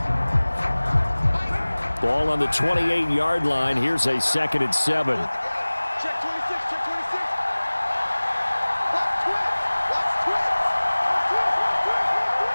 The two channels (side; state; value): both; inverted; correlation -1.00